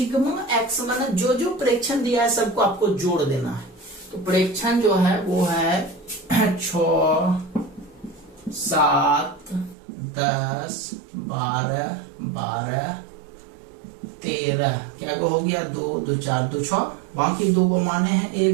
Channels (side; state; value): left; drops out; at 9.8 s